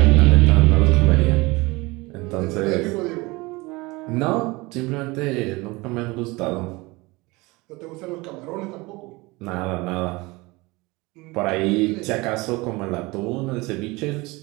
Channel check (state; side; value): quieter; left; 23.3 dB